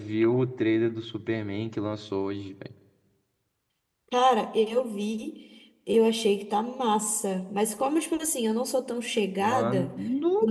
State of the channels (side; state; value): both; identical; correlation 1.00